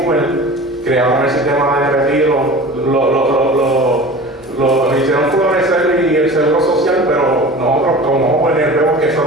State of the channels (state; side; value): normal; both; correlation 0.38